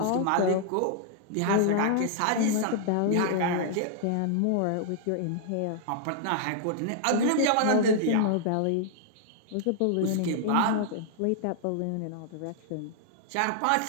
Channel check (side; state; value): both; different; correlation -0.01